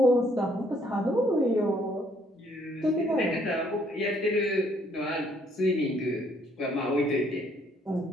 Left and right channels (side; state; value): both; normal; correlation 0.66